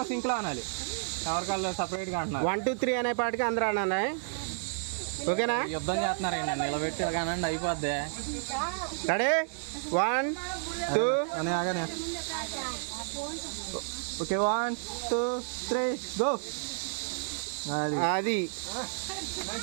సింక్లో అనాలి, ఎవరికాళ్ళు సపరేట్గా అంటున్నారు. 1 2 3 అనే పాటికి అందరూ అనాలి. ఓకేనా? యుద్ధం చేస్తున్నారండి, నిలబెట్టి కానండి అయిపోద్ది. రెడీ 1 2 అని ఆగానే. Okay 1 2 3 go. అది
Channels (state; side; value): silent; left; digital silence